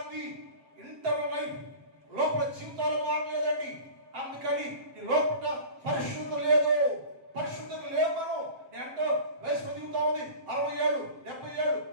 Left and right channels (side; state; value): left; late; 7.5 ms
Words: ఇంటర్నల్ లైఫ్ లోపల జీవితాలు మారలేదండి. అందుకని ఈ లోపల పరిశుద్ధత లేదు, పరిశుద్ధత లేవు. మనం అంటే వయసు పెరుగుతా ఉంది, 60 ఏళ్ళు, 70 ఏళ్ళు,